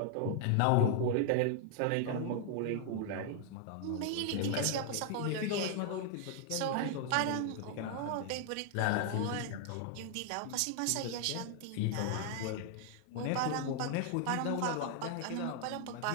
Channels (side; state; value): both; different; correlation 0.00